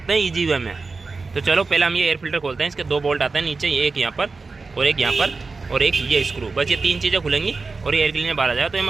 हैं ईजी वे में। तो चलो पहले हम ये एयर फिल्टर खोलते हैं। इसके 2 बोल्ट आते हैं नीचे, एक यहाँ पर और एक यहाँ पर और एक ये स्क्रू, बस ये 3 चीज़ें खुलेंगी और ये एयर क्लीनर बाहर आ जाएगा। तो ये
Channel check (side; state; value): left; quieter; 4.1 dB